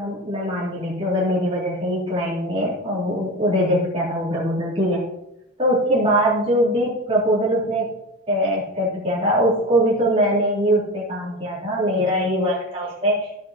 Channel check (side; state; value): both; normal; correlation 0.26